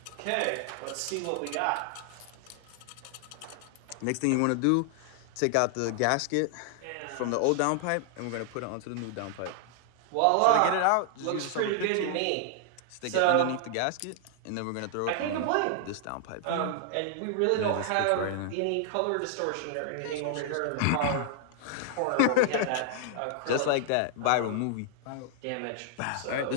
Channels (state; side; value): different; both; correlation 0.00